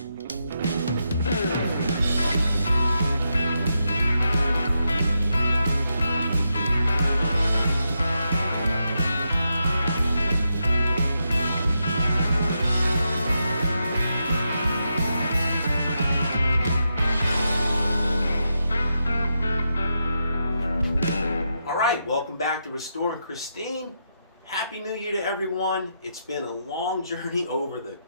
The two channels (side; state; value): both; inverted; correlation -0.84